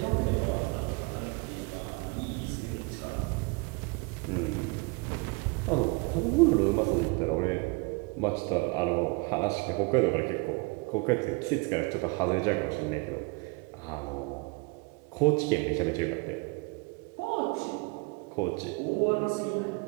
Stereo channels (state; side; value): quieter; left; 28.6 dB